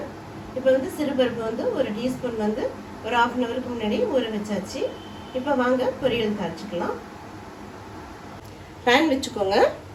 இப்போ வந்து சிறுபருப்பு வந்து ஒரு டீஸ்பூன் வந்து ஒரு 1/2 hourக்கு முன்னாடி ஊற வச்சாச்சு. இப்போ வாங்க பொரியல் தாளிச்சுக்கலாம். பேன் வச்சுக்கோங்க,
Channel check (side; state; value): both; identical; correlation 1.00